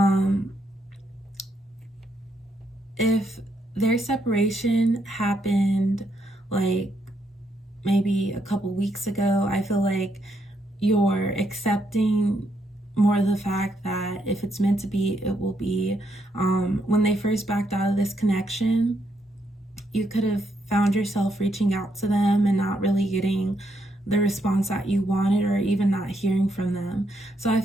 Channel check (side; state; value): both; normal; correlation 0.77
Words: If their separation happened like maybe a couple weeks ago, I feel like you're accepting more the fact that if it's meant to be, it will be. When they first backed out of this connection, you could have found yourself reaching out to them and not really getting the response that you wanted, or even not hearing from them. So I